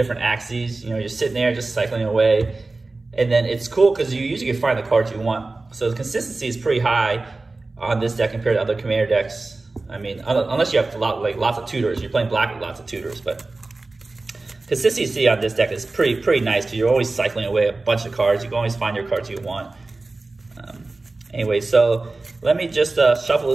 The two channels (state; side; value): quieter; left; 3.4 dB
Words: axes. You're sitting there just cycling away. And then it's cool because you usually can find the cards you want. So the consistency is pretty high on this deck compared to other commander decks. I mean, unless you have lots of tutors. You're playing black with lots of tutors, but consistency on this deck is pretty nice because you're always cycling away a bunch of cards. You can always find your cards you want. Anyway, so let me just shuffle